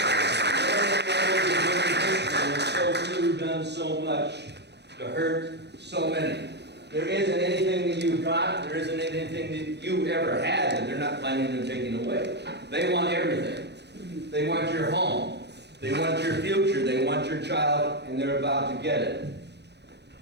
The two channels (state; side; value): late; left; 0.50 ms